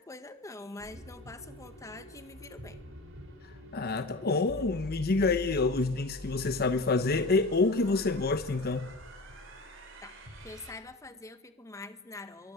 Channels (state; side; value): quieter; right; 3.0 dB